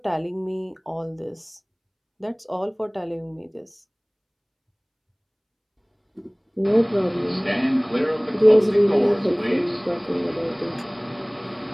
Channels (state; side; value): identical; both; correlation 1.00